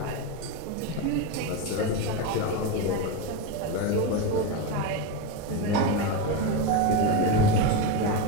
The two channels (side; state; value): both; different; correlation 0.06